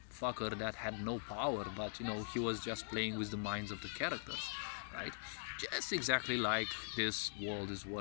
fucker that had no power, but he was just playing with the minds of the characters, right? Just exactly like this world is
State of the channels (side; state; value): right; silent; digital silence